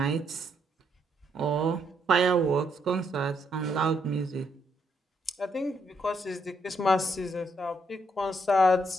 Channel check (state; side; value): normal; both; correlation 0.75